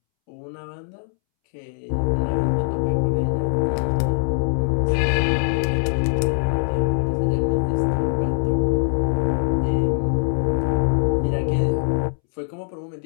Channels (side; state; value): right; silent; 64 dB below the other